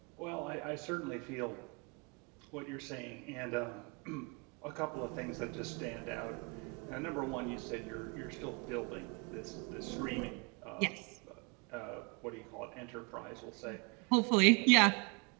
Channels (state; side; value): quieter; left; 31.4 dB